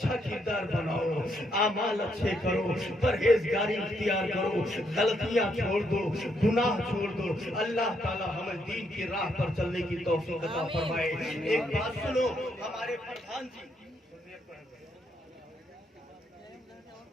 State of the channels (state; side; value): normal; both; correlation 0.75